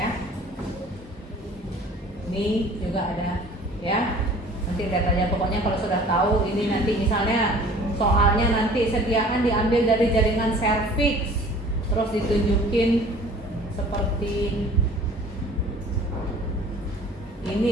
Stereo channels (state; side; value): normal; both; correlation 0.48